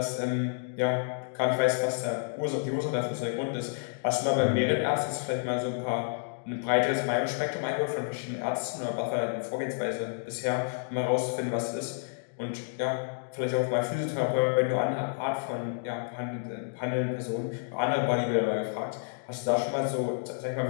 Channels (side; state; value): right; silent; digital silence